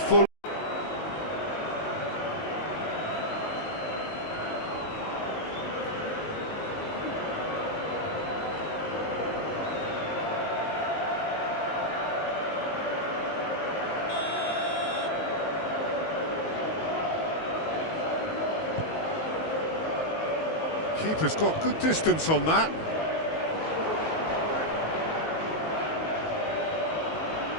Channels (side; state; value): right; late; 19 ms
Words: Keeper's got good distance on that.